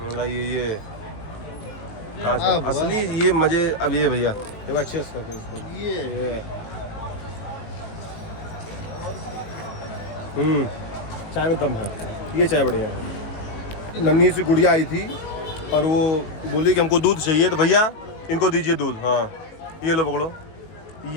ये कांच असली ये मजे। अब ये भैया एक बार अच्छे से ये चाय में दम है। ये चाय बढ़िया है। नन्ही सी गुड़िया आई थी और वो बोली कि हमको दूध चाहिए, तो भैया इनको दीजिए दूध। हाँ ये लो पकड़ो।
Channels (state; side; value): late; right; 18 ms